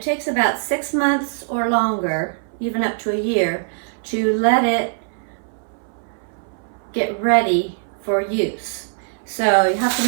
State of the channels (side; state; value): left; silent; 61 dB below the other